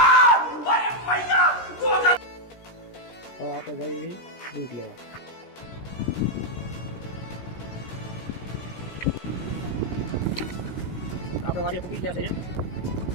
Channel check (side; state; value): right; late; 17 ms